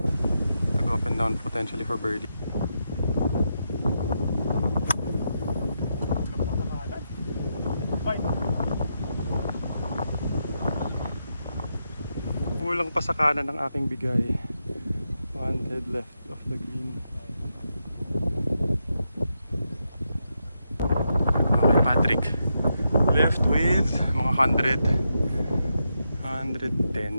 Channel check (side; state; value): both; inverted; correlation -0.83